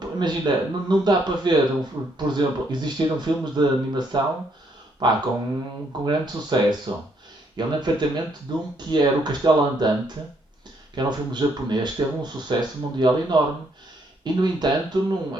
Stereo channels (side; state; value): both; normal; correlation 0.71